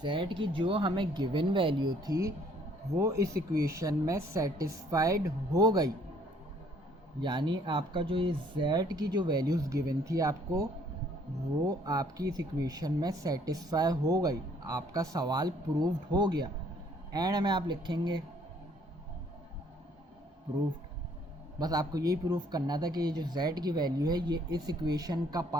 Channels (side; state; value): both; normal; correlation 0.62